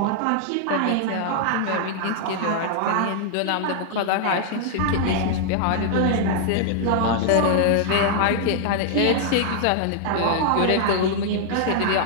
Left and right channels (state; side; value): different; both; correlation -0.01